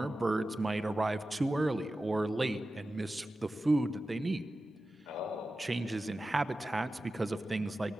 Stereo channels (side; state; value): both; normal; correlation 0.94